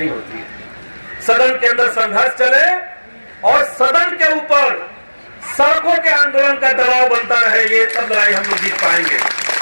होती है। सदन के अंदर संघर्ष चले और सदन के ऊपर सड़कों के आंदोलन का दबाव बनता रहे, ये सब लड़ाई हम लोग जीत पाएंगे।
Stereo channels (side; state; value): both; inverted; correlation -1.00